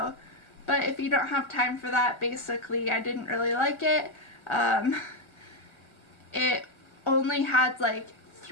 But if you don't have time for that, basically, I didn't really like it. It only had, like,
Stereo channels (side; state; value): right; late; 1.3 ms